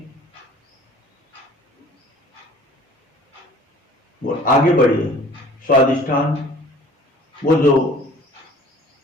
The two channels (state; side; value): normal; both; correlation 0.48